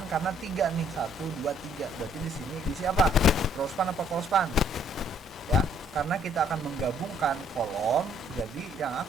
Karena 3 nih, 1 2 3. Berarti di sini diisi apa? Row span apa call span? Ya, karena kita akan menggabungkan kolom, jadi yang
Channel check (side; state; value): both; normal; correlation 0.64